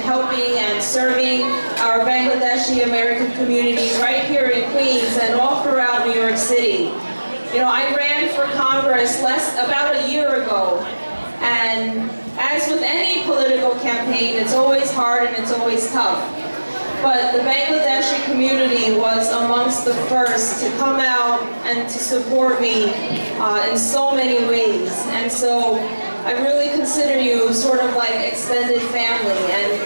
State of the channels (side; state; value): both; inverted; correlation -1.00